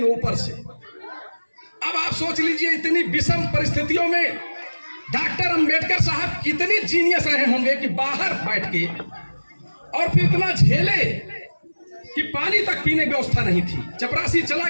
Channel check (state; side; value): inverted; both; correlation -1.00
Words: ऊपर से। अब आप सोच लीजिए इतनी विषम परिस्थितियों में डॉक्टर अंबेडकर साहब कितने जीनियस रहे होंगे कि बाहर बैठ के, और फिर इतना झेले कि पानी तक पीने की व्यवस्था नहीं थी। चपरासी चला